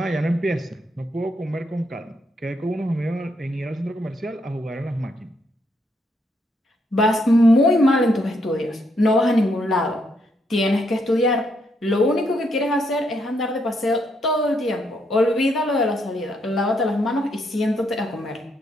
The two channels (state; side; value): normal; both; correlation 0.76